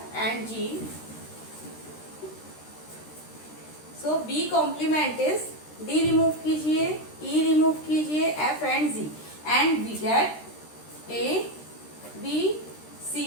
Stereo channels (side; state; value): right; late; 13 ms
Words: and G. So B complement is D remove कीजिए, ई रिमूव कीजिए, F and G, and we get A B C